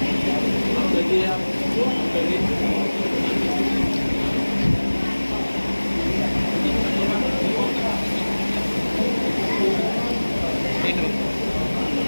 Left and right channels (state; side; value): inverted; both; correlation -1.00